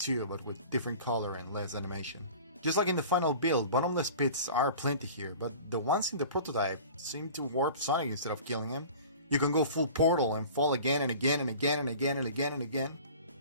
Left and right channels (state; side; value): inverted; both; correlation -0.42